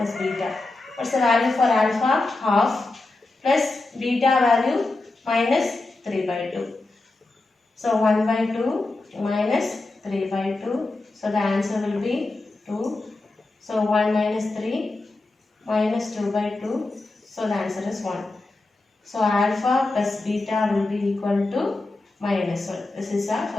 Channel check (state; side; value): quieter; right; 3.1 dB